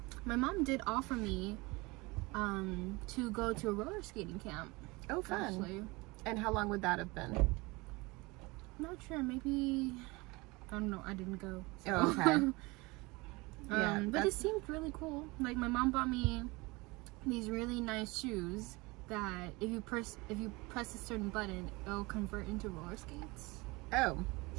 my mom did offer me to go to a roller skating camp. Oh, fun. Actually. And how long would that have been? I'm not sure, maybe, I don't know, I didn't go. So. Oh, okay. Yeah, but it seemed really cool. Like, my mom bought me these really nice shoes that if you press a certain button, it'll convert into roller skates. Oh.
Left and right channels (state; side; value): quieter; left; 24.2 dB